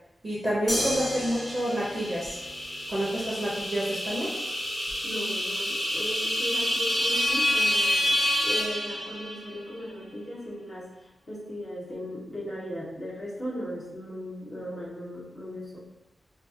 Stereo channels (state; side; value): normal; both; correlation 0.92